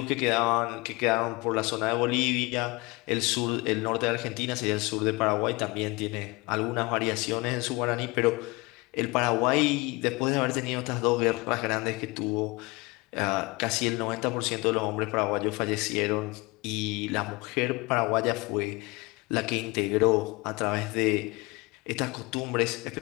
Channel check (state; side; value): quieter; right; 24.7 dB